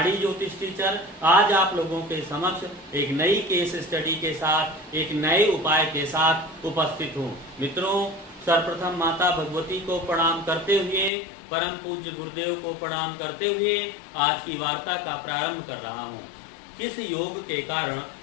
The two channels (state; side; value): drops out; right; at 11.1 s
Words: ज्योतिष टीचर, आज आप लोगों के समक्ष एक नई केस स्टडी के साथ, एक नए उपाय के साथ उपस्थित हूँ। मित्रों, सर्वप्रथम माता भगवती को प्रणाम करते हुए, परम पूज्य गुरुदेव को प्रणाम करते हुए आज की वार्ता का प्रारंभ कर रहा हूँ। किस योग के कारण